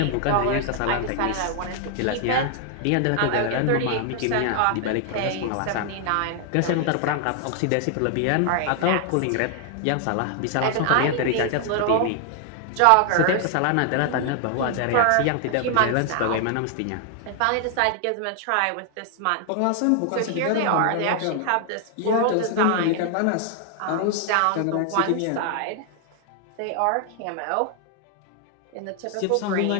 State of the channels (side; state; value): both; different; correlation 0.00